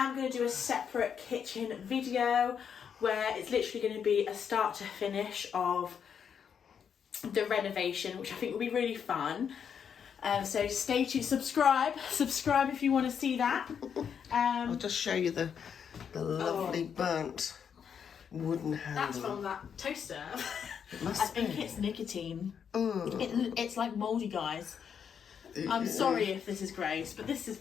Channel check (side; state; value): right; quieter; 7.5 dB